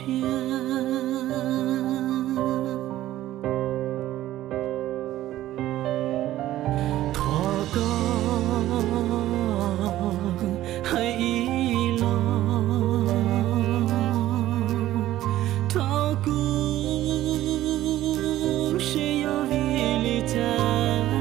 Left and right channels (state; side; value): quieter; left; 14.3 dB